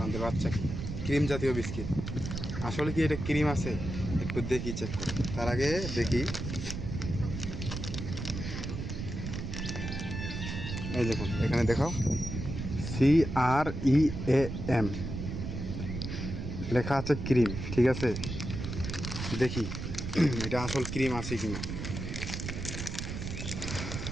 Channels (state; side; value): noise; right; rumble, 5 dB below the sound